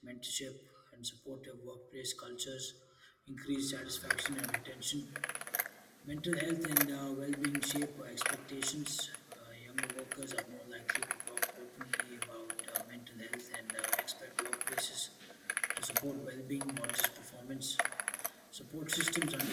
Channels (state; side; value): identical; both; correlation 1.00